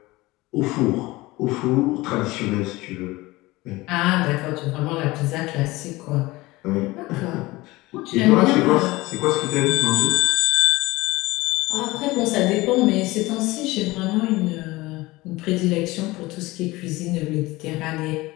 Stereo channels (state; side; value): quieter; right; 20.4 dB